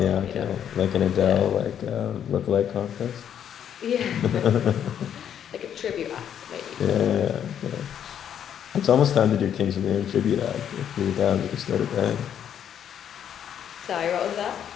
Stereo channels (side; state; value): right; quieter; 9.2 dB